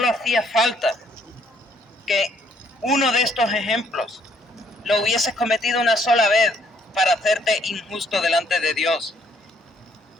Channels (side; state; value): both; normal; correlation 0.66